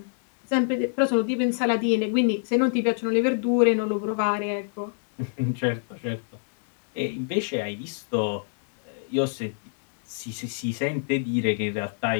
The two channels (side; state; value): right; silent; digital silence